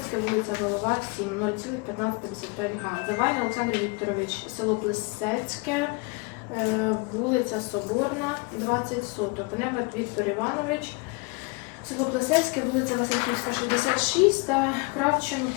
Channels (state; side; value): quieter; right; 28.3 dB